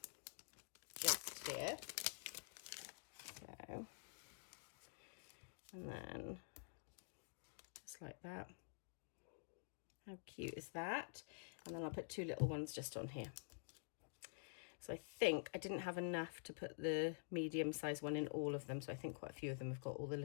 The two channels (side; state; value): right; silent; digital silence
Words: just here. So, and then just like that. How cute is that? And then I'll put two little ones just on here. So I think I didn't have enough to put the medium size one in all of them. So I think quite a few of them have got all the